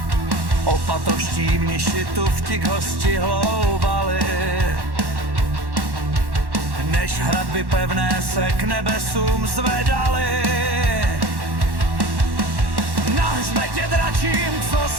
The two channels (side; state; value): left; late; 1.1 ms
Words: Opatoští mniši tu vtik hosti hloubali, než hradby pevné se k nebesům zvedaly. Na hřbetě dračím, co